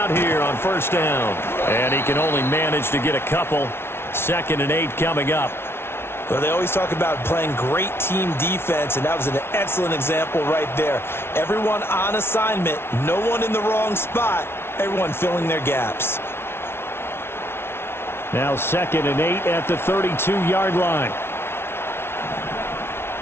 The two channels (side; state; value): right; late; 0.12 ms